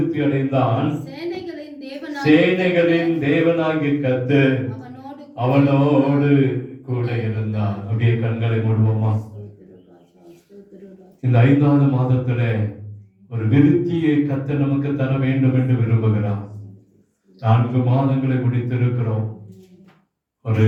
அடைந்தான். சேனைகளின் தேவனாகிய கர்த்தர் அவனோடு கூட இருந்தான். அப்படியே கண்களை மூடுவோமா. இந்த 5வது மாதத்துல ஒரு விருத்தியை கர்த்தர் நமக்கு தர வேண்டும் என்று விரும்புகிறார். 4 மாதங்களை முடித்திருக்கிறோம். ஒரு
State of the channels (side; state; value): both; identical; correlation 1.00